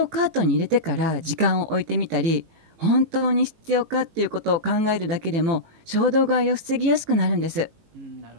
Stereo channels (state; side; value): late; left; 18 ms